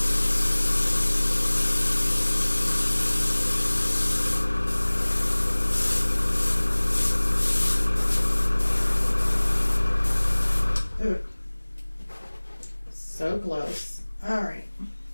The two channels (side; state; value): both; inverted; correlation -1.00